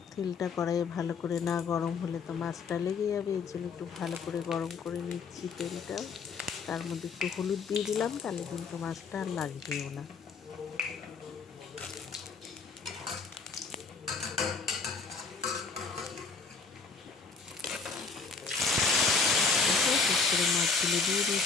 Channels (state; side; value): quieter; right; 4.8 dB